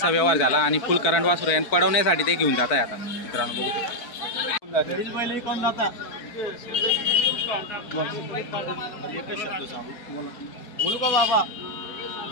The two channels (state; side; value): late; right; 4.5 ms